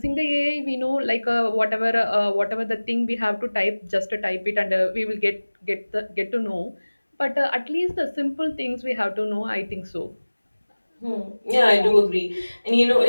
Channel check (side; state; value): both; inverted; correlation -1.00